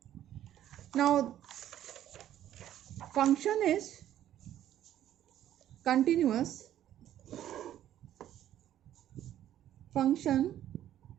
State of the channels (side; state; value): left; quieter; 11.8 dB